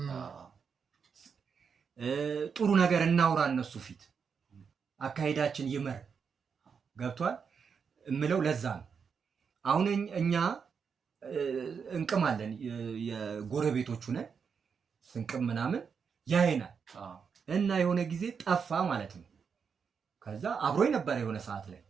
ጥሩ ነገር እናውራ እነሱ ፊት አካይዳችን ይመር ገብቷል እምለው ለዛ ነው አሁን እኛ እንቅማለን የጎረቤቶቹ ነን ስንቅም ምናምን ያይናል እና የሆነ ጊዜ ጠፋ ማለት ነው ከዛ አብሮኝ ነበር የሆነ ሰዓት ላይ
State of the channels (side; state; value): left; quieter; 6.3 dB